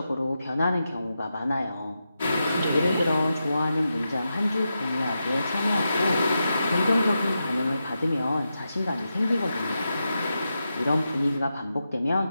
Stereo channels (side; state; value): both; inverted; correlation -0.88